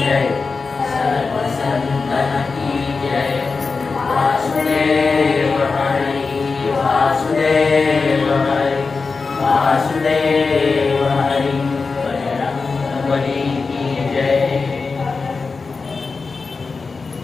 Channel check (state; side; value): quieter; right; 4.4 dB